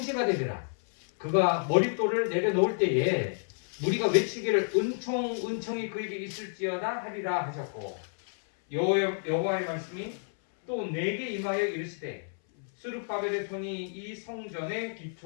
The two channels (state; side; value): silent; right; 58 dB below the other